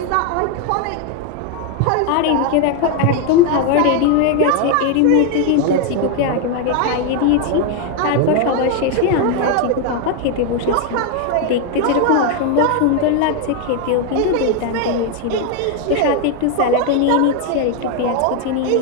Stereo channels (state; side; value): different; both; correlation 0.01